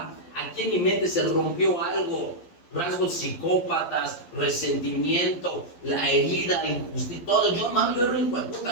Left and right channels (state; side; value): late; right; 11 ms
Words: aquí en mi mente se rompió algo, rasgos psicópatas, resentimiento, la herida, injusticia, todo. Yo era un hijo de puta